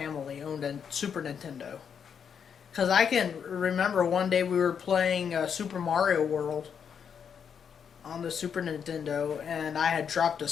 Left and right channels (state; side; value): quieter; right; 7.3 dB